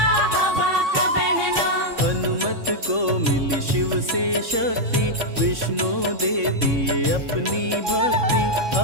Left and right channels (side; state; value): left; late; 3.6 ms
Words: हवा का बहना। हनुमत को मिली शिव से शक्ति, विष्णु दे दिए अपनी भक्ति।